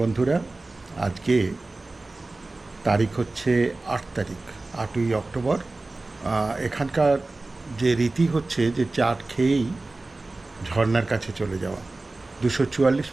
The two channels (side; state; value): left; quieter; 3.1 dB